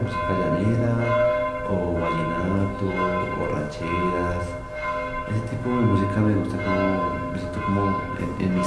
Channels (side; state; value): both; identical; correlation 1.00